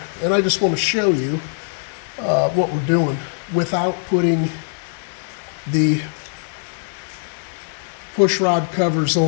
And I just want to show you what we're doing without putting the push rod covers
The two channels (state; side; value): silent; right; digital silence